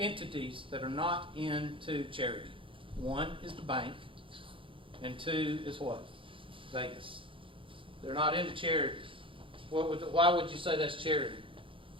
that are not into charity. 1 is the bank, and 2 is what? Vegas. They're not into charity. Why would you say that's charity?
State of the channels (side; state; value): left; late; 0.25 ms